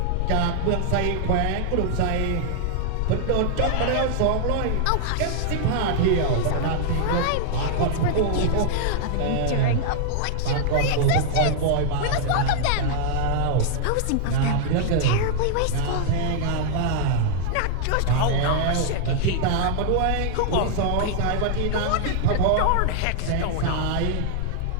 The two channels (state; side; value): different; both; correlation -0.01